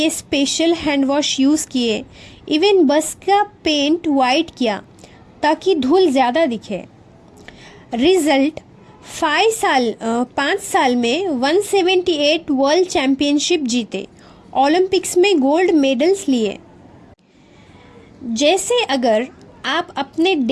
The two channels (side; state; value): both; identical; correlation 1.00